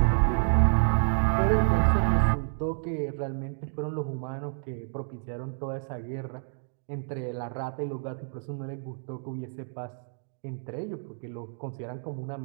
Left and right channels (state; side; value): silent; left; digital silence